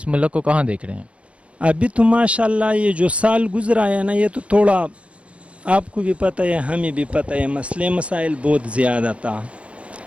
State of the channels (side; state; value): left; late; 0.062 ms